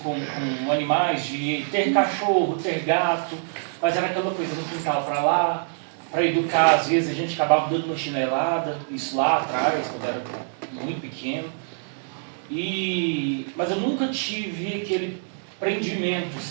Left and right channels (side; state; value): left; silent; digital silence